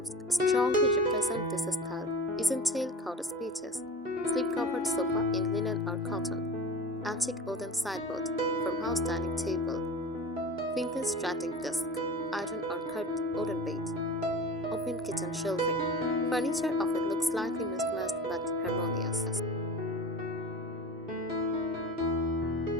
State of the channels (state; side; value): normal; both; correlation 0.34